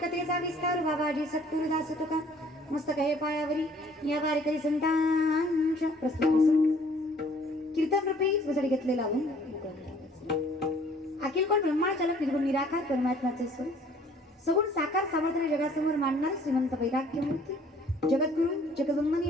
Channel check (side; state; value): both; normal; correlation 0.57